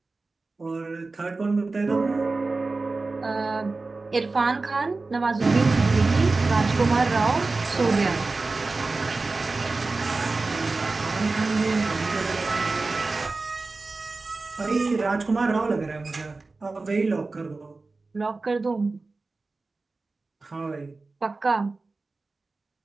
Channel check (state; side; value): quieter; left; 3.6 dB